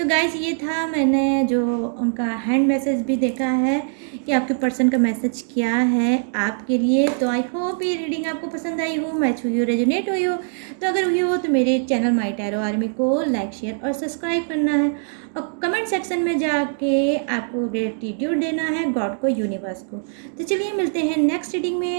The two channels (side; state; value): left; silent; digital silence